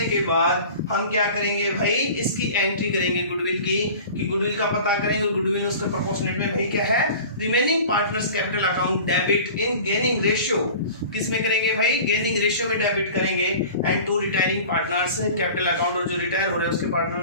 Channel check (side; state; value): both; inverted; correlation -0.40